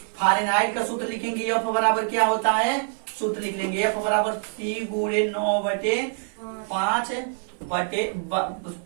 फारेनहाइट का सूत्र लिखेंगे, एफ बराबर क्या होता है, सूत्र लिख लेंगे एफ बराबर सी गुणे 9/5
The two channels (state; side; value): silent; left; 59 dB below the other